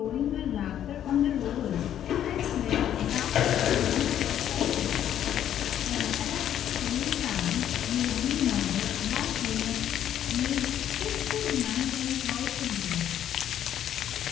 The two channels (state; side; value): quieter; right; 10.6 dB